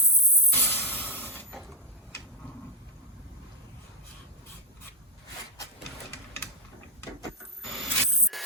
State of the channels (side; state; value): both; normal; correlation 0.03